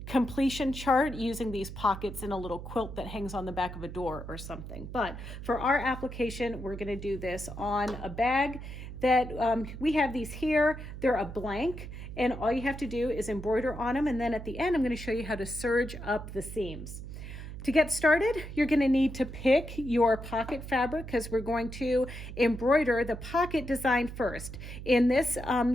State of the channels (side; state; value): right; noise; hum, 10 dB below the sound